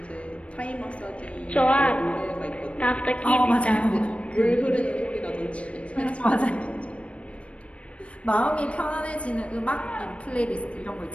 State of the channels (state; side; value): late; right; 0.062 ms